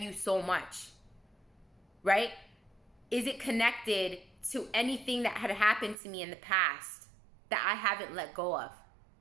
you so much? Right? Is it connected to anything that had happened to me in the past that I haven't let go of?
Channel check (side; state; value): left; drops out; at 6.0 s